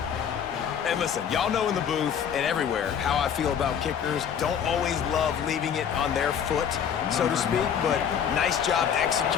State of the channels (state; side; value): quieter; right; 8.1 dB